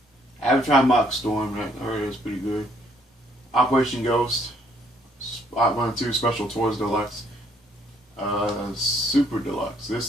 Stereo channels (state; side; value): normal; both; correlation 0.67